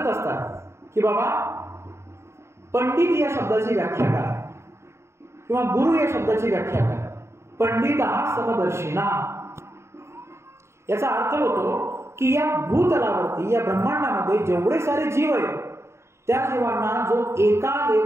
असतात की बाबा पंडित या शब्दाची व्याख्या काय, किंवा गुरु या शब्दाची व्याख्या काय. पंडित हा समदर्शिना, याचा अर्थ होतो की या भूतलावरती या ब्रह्मांडामध्ये जेवढे सारे जीव आहेत त्या जीवांना जो एका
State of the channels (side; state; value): left; late; 0.13 ms